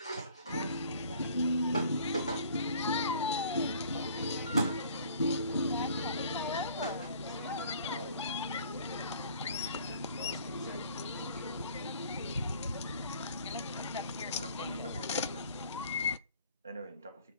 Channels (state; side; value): inverted; both; correlation -0.53